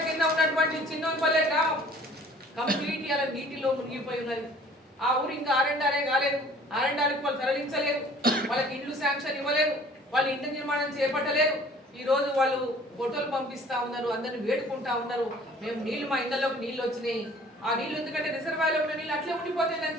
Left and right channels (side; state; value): both; normal; correlation 0.52